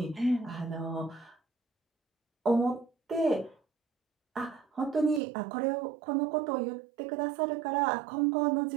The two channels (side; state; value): left; drops out; at 5.2 s